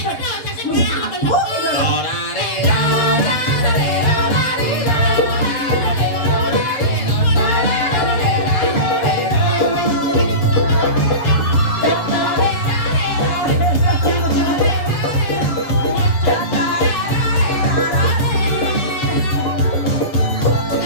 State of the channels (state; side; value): late; right; 7.4 ms